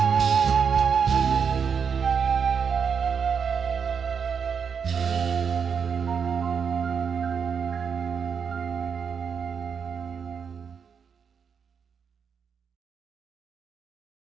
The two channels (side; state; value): left; quieter; 6.6 dB